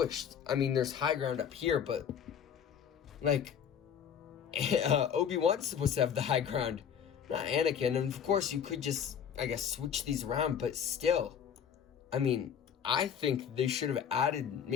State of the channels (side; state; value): right; quieter; 8.0 dB